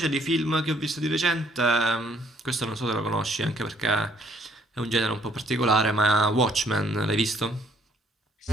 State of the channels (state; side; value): normal; both; correlation 0.65